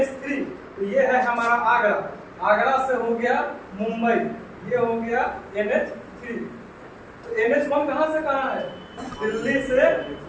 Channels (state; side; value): identical; both; correlation 1.00